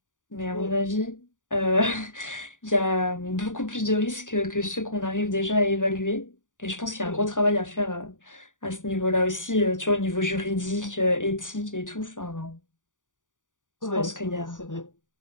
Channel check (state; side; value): late; right; 0.87 ms